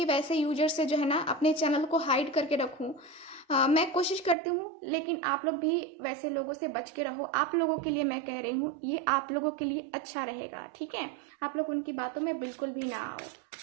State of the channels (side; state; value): left; drops out; at 4.4 s